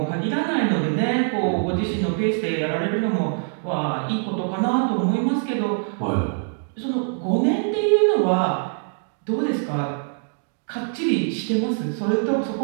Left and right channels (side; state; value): left; silent; 63 dB below the other